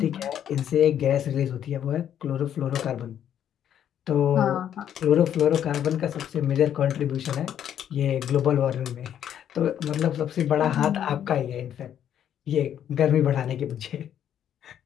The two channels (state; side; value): quieter; right; 9.9 dB